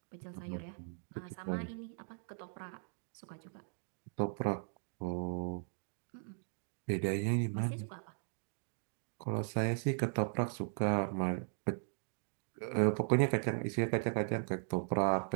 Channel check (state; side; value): silent; left; 52 dB below the other